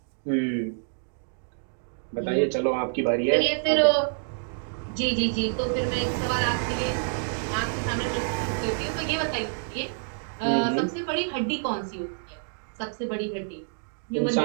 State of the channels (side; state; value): left; silent; digital silence